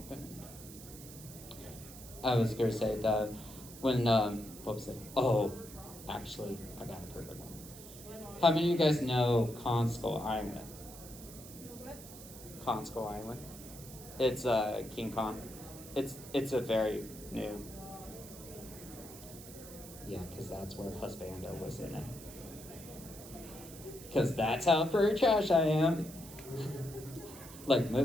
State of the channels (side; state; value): right; noise; hiss, 15 dB below the sound